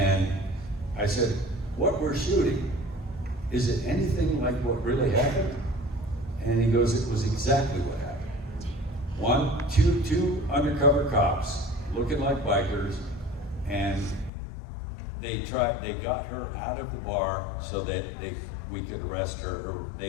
I said, what we're shooting, is it anything like what really happened? And he goes, it was exactly what happened. Two undercover cops looking like bikers, and they got her out of the bar so that we could arrest her, or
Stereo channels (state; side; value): drops out; right; at 14.3 s